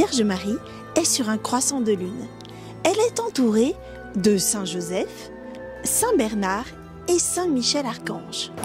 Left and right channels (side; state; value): both; identical; correlation 1.00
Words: Marie est sur un croissant de lune. Elle est entourée de Saint Joseph, Saint Bernard et Saint Michel Archange.